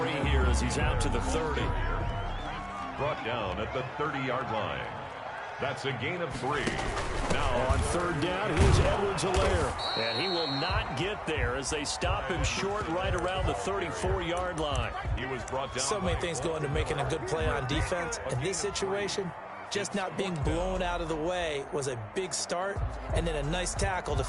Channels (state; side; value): identical; both; correlation 1.00